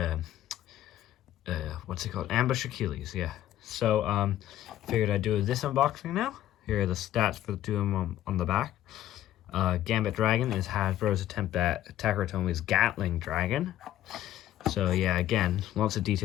what's it called? Ambush Achilles, yeah. So, figured I'd do this unboxing now. Here are the stats for the two of them on the back. Gambit Dragon is Hasbro's attempt at Takaratomi's Gatling Dragon. So yeah, again, lots of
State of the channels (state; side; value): quieter; right; 12.9 dB